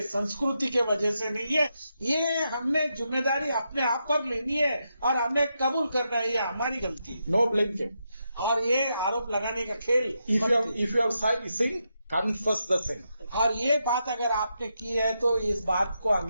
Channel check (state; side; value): inverted; both; correlation -0.84